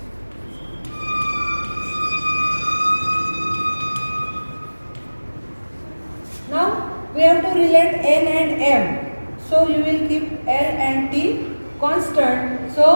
Now, we have to relate N and M. So, you will keep L and T constant.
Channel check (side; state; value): both; inverted; correlation -1.00